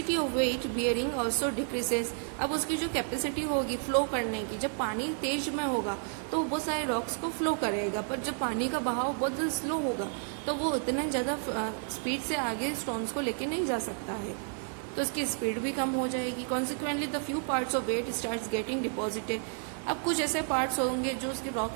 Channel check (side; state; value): left; silent; 57 dB below the other